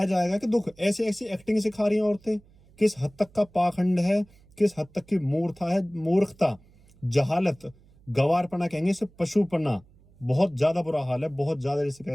जाएगा कि दुख। ऐसी ऐसी एक्टिंग सिखा रही हैं औरतें। किस हद तक का पाखंड है, किस हद तक की मूर्खता है, मूर्खता, जहालत, गवारपना कहेंगे इसे, पशुपना। बहुत ज्यादा बुरा हाल है, बहुत ज्यादा, जिसे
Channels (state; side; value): noise; right; hum, 28 dB below the sound